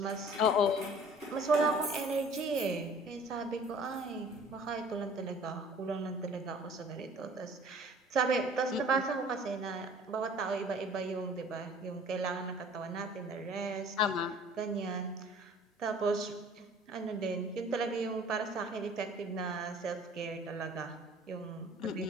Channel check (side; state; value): both; normal; correlation 0.50